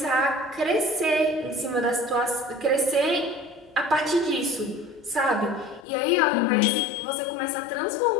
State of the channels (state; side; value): drops out; right; at 5.9 s